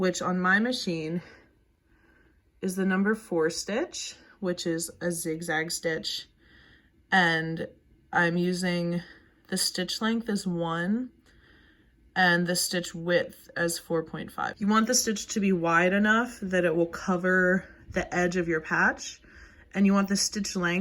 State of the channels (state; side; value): identical; both; correlation 1.00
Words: on my machine is the number 4 stitch, which is a zigzag stitch. And I'm using the stitch length as 1 and the stitch width as 4.5. You want the stitch to be wide enough that it will cover the edge of your patch, and you want the stitch